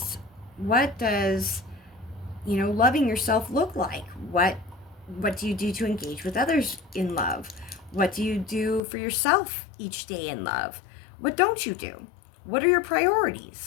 you know, loving yourself look like? What do you do to engage with others in love? What do you do for yourself each day in love? What don't you do? What are your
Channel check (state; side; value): drops out; right; at 8.8 s